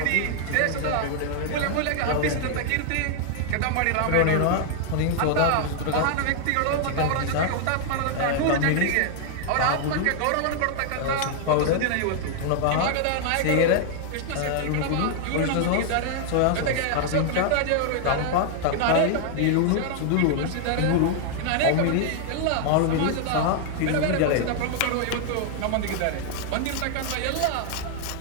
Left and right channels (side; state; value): both; different; correlation 0.00